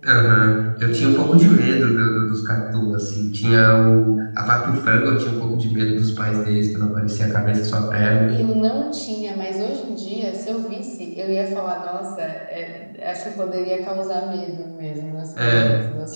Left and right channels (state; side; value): inverted; both; correlation -1.00